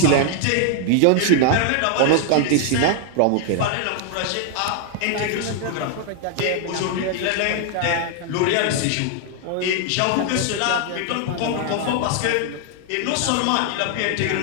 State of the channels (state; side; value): different; both; correlation 0.00